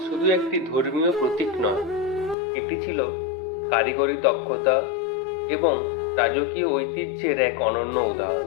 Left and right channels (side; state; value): right; drops out; at 2.4 s